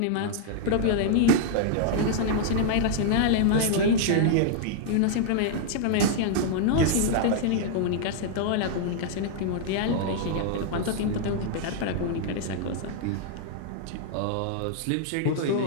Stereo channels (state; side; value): different; both; correlation -0.01